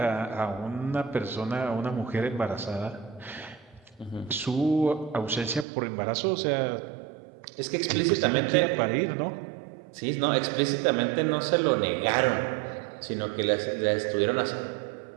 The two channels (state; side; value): drops out; left; at 5.7 s